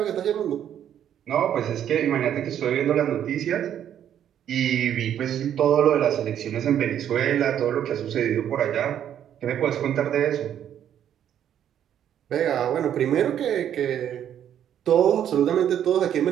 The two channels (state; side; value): quieter; left; 10.0 dB